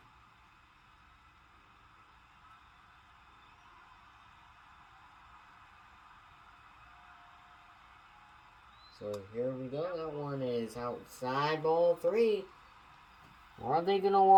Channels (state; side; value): identical; both; correlation 1.00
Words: So here we go. That one is outside, ball 3. Are they going to